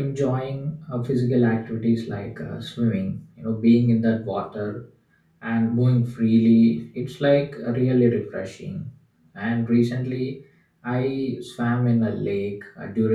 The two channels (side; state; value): both; identical; correlation 1.00